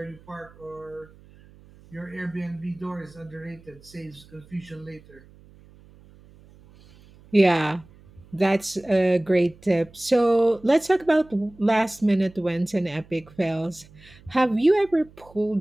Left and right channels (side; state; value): right; noise; hum, 25 dB below the sound